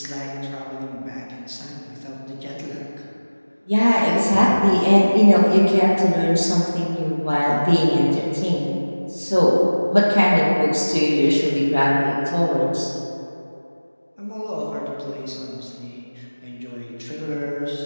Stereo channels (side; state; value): both; inverted; correlation -1.00